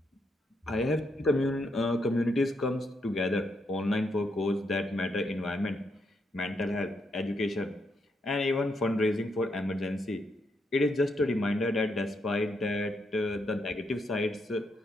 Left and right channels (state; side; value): normal; both; correlation 0.79